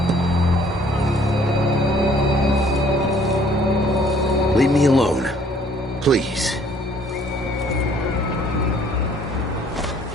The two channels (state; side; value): normal; both; correlation 0.59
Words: Leave me alone. Please.